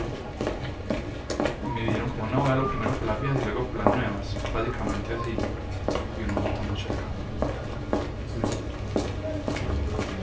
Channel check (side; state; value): both; identical; correlation 1.00